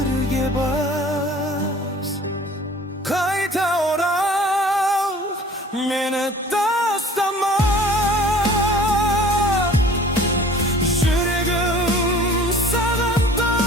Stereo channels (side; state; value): both; normal; correlation 0.48